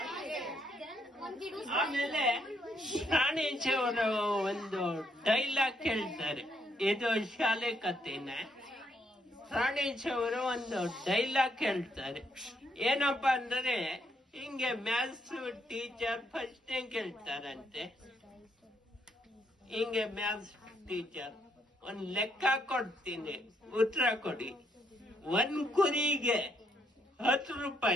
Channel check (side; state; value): both; normal; correlation 0.74